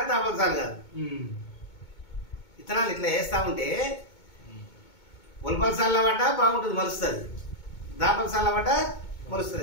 తాపల్సాలు కాదు. విత్తనాలు ఇట్లా వేస్తా ఉంటే ఒల్పల్సాల పడ్డ బాగుంటుంది, మలుస్తుంది. దాపల్సాల పడ్డ మలుస్తుంది.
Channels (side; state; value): right; late; 2.2 ms